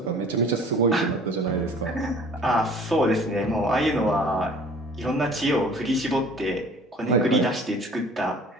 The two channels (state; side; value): normal; both; correlation 0.49